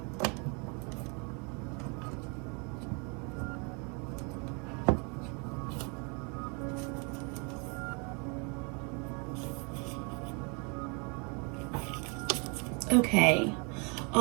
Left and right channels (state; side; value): quieter; left; 34.0 dB